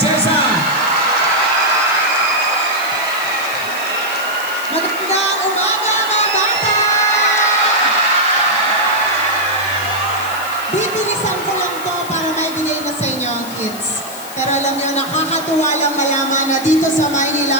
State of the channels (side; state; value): left; noise; hiss, 14 dB below the sound